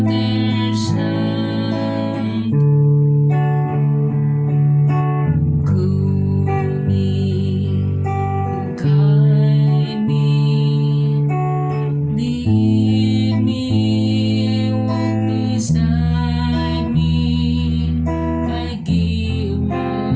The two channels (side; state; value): both; identical; correlation 1.00